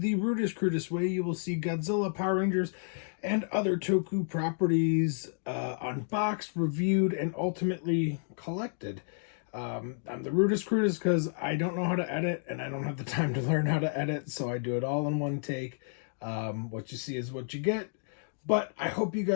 the rudest, crudest way you will see Godzilla, Power Rangers, and other Toku properties unboxed, reviewed, and ultimately collected. I'm the rudest, crudest because I don't know how to edit, and I don't have the time to learn how to edit, so I do it all in one take. What you see is what you get, but I hope you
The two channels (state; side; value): silent; right; digital silence